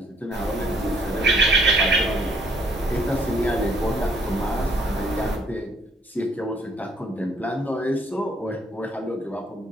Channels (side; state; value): both; normal; correlation 0.65